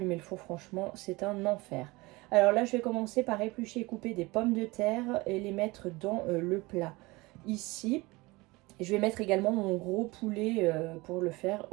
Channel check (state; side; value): quieter; left; 22.8 dB